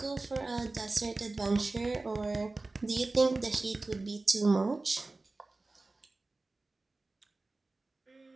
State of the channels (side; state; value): left; quieter; 3.2 dB